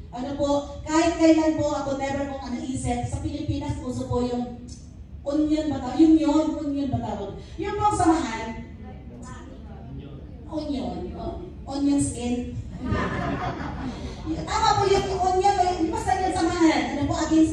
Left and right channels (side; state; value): both; identical; correlation 1.00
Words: Kahit kailan po ako never kong isip, sa Pilipinas, uso po yung onion ba tawag? Onion ba tawag? Yung pong samahan, onion skin. Tama po yung onion, basta yung samahan,